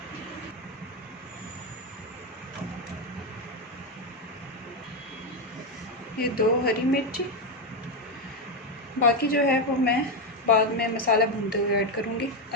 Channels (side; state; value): both; normal; correlation 0.07